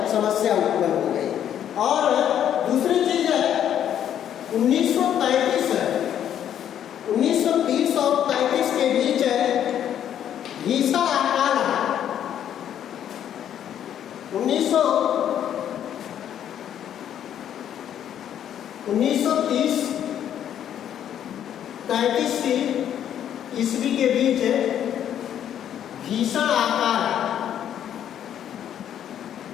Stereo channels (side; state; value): right; quieter; 10.0 dB